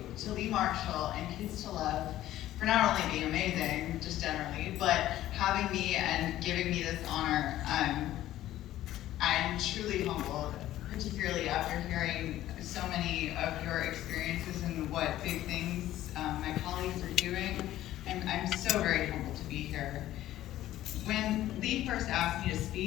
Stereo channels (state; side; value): quieter; right; 13.9 dB